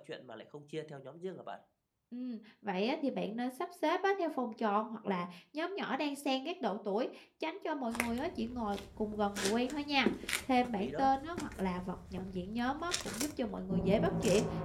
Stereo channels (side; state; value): both; identical; correlation 1.00